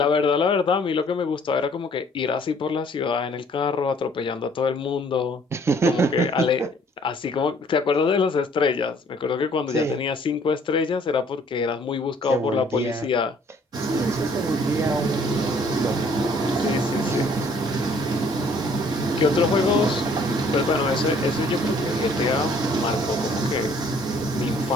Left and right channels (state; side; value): normal; both; correlation 0.59